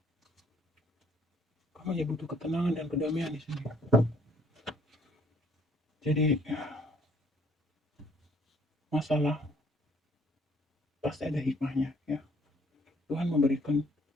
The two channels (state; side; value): normal; both; correlation 0.62